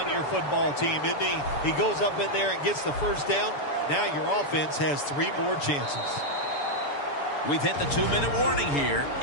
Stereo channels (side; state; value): right; late; 7.0 ms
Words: your football team, isn't he? He goes up in there and gets the first down. Now your offense has 3 more chances. We've hit the 2-minute warning here